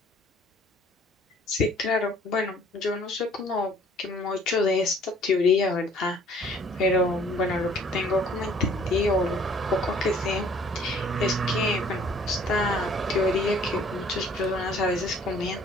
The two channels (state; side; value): normal; both; correlation 0.56